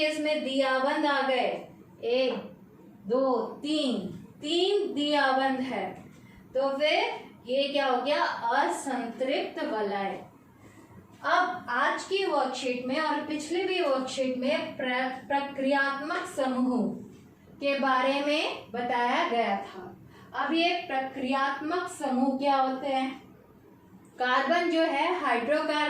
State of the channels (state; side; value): identical; both; correlation 1.00